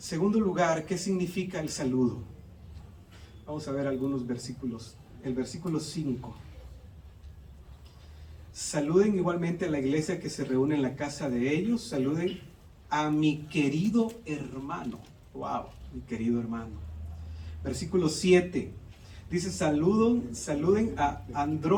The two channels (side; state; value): both; identical; correlation 1.00